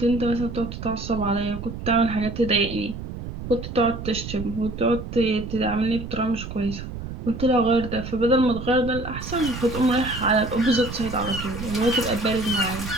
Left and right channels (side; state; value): right; noise; rumble, 9 dB below the sound